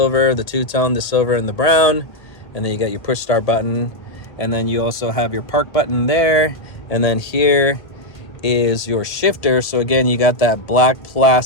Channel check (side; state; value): right; late; 1.5 ms